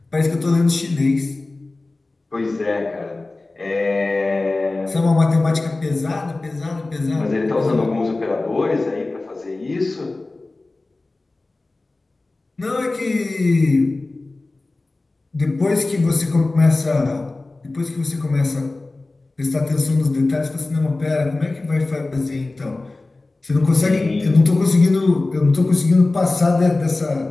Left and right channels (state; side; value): quieter; right; 3.2 dB